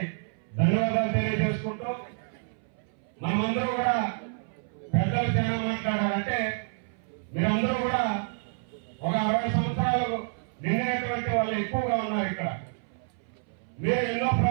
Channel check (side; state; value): left; silent; 59 dB below the other